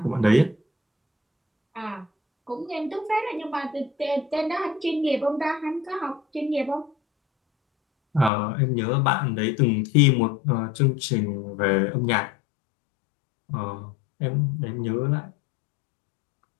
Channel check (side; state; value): right; drops out; at 8.3 s